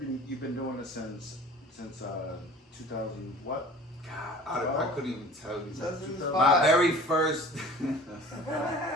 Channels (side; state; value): both; normal; correlation 0.44